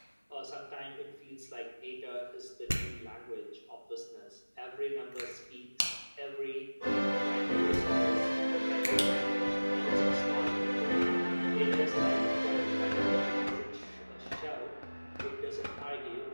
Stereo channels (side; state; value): both; inverted; correlation -1.00